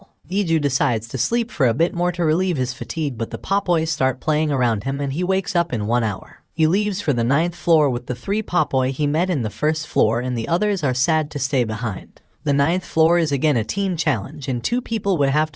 Iju decides to sleep for a bit more to relieve his fatigue, but the Popoi start playing around him and he wakes up in 1 hour. He leaves for the 9th floor with the 3 Popoi he met in the 1st floor, and the others are sad to stay behind. The 9th floor is again a team challenge, and 2 people would have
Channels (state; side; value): identical; both; correlation 1.00